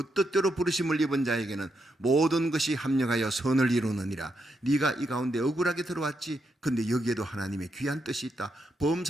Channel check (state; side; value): normal; both; correlation 0.82